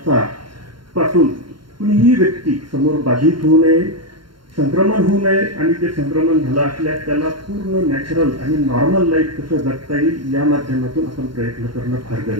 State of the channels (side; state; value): left; late; 0.72 ms